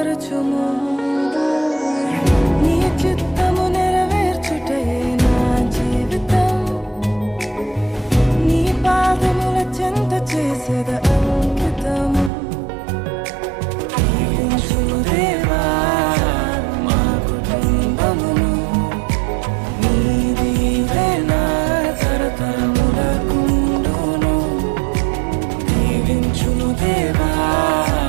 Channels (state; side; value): drops out; left; at 12.3 s